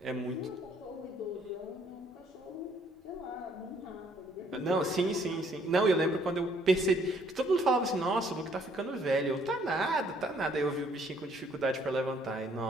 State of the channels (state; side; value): normal; both; correlation 0.64